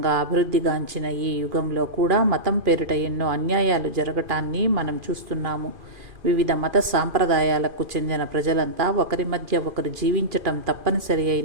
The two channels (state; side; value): late; left; 2.4 ms